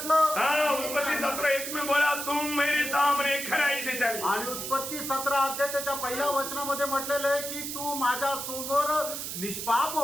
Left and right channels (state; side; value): noise; right; hiss, 5 dB below the sound